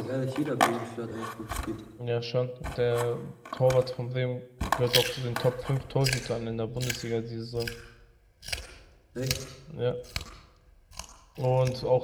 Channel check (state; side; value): identical; both; correlation 1.00